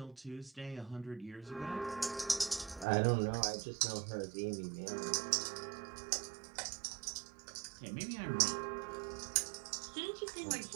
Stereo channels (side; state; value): left; drops out; at 2.9 s